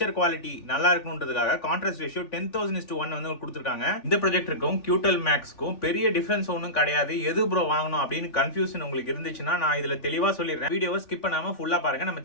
குவாலிட்டி நல்லா இருக்கணும்ன்றதுக்காக கான்ட்ராஸ்ட் ரேஷியோ 10:1 வந்து கொடுத்திருக்காங்க. இந்த ப்ரொஜெக்டருக்கும் QTEL Maxக்கும் பெரிய டிஃபரன்ஸ் ஒன்றும் கிடையாது. எது ப்ரோ வாங்கணும் அப்படின்னு கன்ஃபியூஷன் உங்களுக்கு இருந்துச்சுன்னா நான் இதுல தெளிவா சொல்லிடுறேன். வீடியோவை ஸ்கிப் பண்ணாம ஃபுல்லா பாருங்க. நம்ம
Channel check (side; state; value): right; late; 3.6 ms